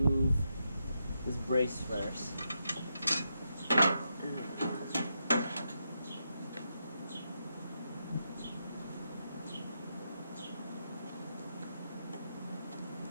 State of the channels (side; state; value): both; inverted; correlation -0.83